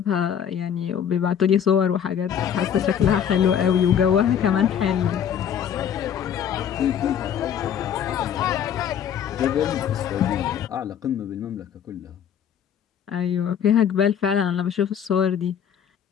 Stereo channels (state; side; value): quieter; right; 8.7 dB